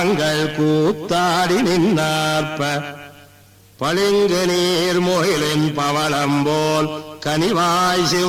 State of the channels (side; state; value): both; identical; correlation 1.00